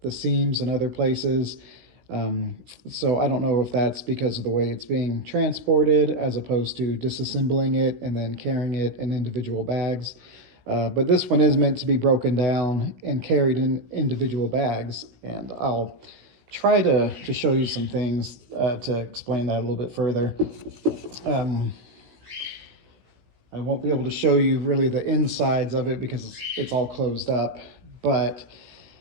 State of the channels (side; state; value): left; late; 17 ms